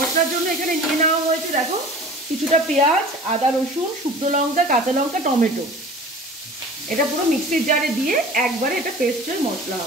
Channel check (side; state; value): both; normal; correlation 0.41